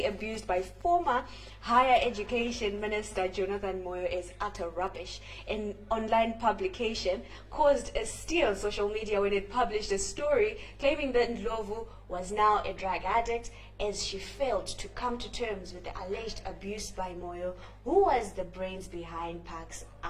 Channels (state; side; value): identical; both; correlation 1.00